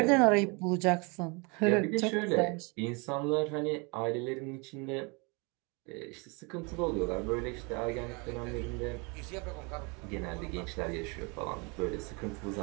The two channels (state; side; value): quieter; left; 30.5 dB